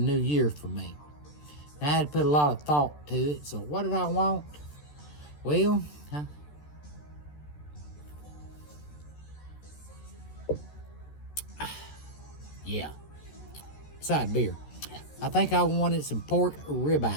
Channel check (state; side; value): late; right; 14 ms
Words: year for me. And I had to put a lot of thought to it. So what did I want? Well, yeah, side beer. I think I wanted some pork